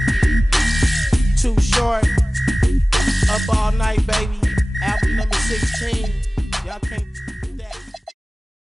Too short. Up all night, baby. Album number 16. Y'all can't do that.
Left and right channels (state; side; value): normal; both; correlation 0.97